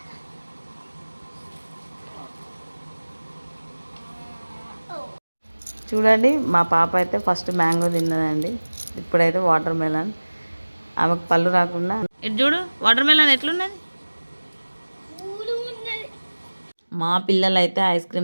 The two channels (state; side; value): inverted; both; correlation -1.00